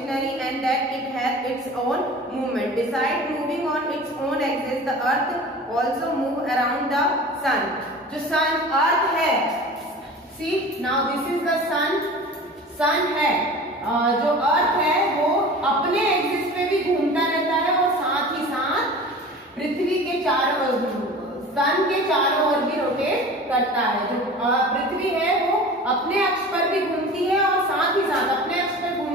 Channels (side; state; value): both; normal; correlation 0.38